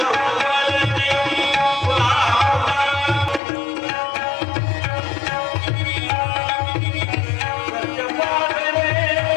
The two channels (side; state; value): right; drops out; at 3.4 s